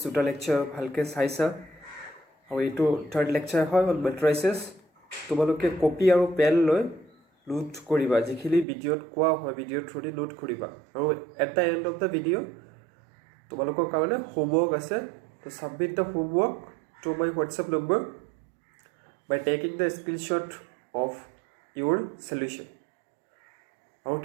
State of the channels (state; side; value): drops out; left; at 8.7 s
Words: দুটা lecture ভালকে চাইছা আৰু এইটো third lecture হয় on matrices তোমালোকে কপি আৰু পেন লৈ নোট কৰিবা যিখিনি ভিডিঅত কোৱা হয় ভিডিঅ থ্ৰুদি নোট কৰিবা আৰু at the end of the video তোমালোকৰ কাৰণে homework আছে to submit the homework to my WhatsApp number by taking the screenshot of your solution আৰু